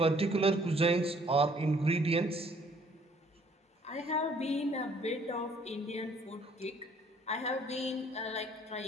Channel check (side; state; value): both; normal; correlation 0.60